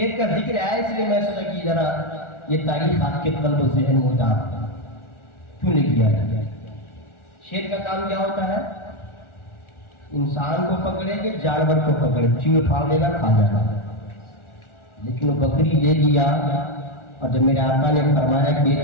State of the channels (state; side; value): late; right; 1.4 ms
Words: کا ذکر ہے اس لیے میں سوچا کہ ذرا یہ تاریخ آپ کے قلب و ذہن میں اتار کیوں لے کیا ہے؟ شیر کا کام کیا ہوتا ہے؟ انسان کو پکڑے کہ جانور کو پکڑے، چیڑ پھاڑ لینا، کھا جانا. لیکن وہ بکری لے لیا، اور جب میرے آقا نے فرمایا کہ یہ